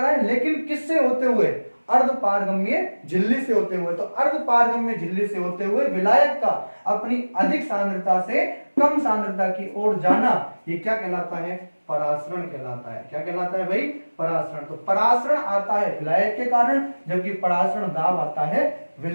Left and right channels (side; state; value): both; inverted; correlation -1.00